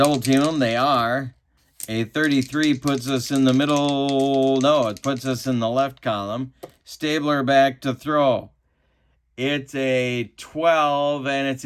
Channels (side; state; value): both; identical; correlation 1.00